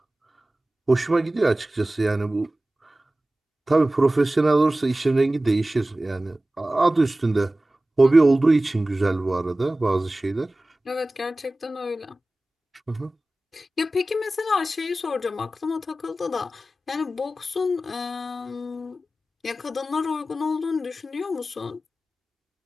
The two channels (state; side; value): normal; both; correlation 0.96